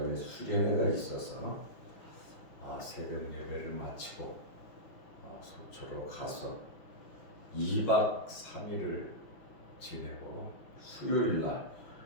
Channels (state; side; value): late; right; 5.5 ms